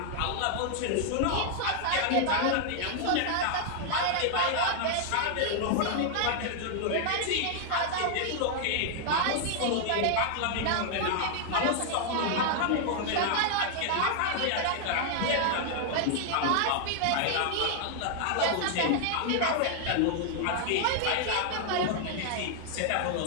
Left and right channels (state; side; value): different; both; correlation 0.00